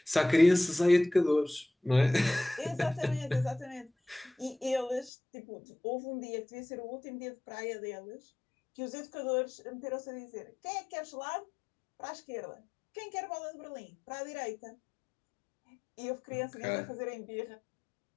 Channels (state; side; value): drops out; right; at 5.1 s